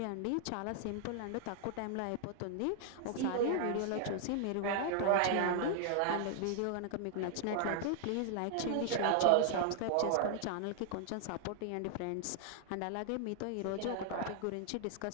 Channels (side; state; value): both; different; correlation 0.00